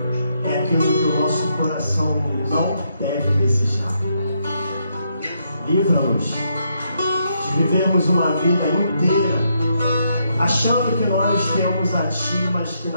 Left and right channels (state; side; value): inverted; both; correlation -0.77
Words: é aquilo que o nosso coração não deve desejar. Livra-nos de vivermos uma vida inteira achando que nós temos a Ti, mas que